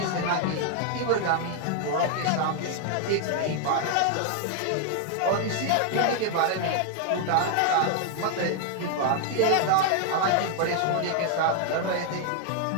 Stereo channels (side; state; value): both; different; correlation 0.00